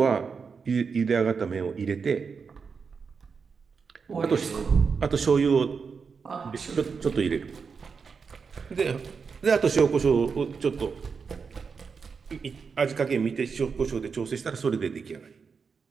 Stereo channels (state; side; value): quieter; left; 5.5 dB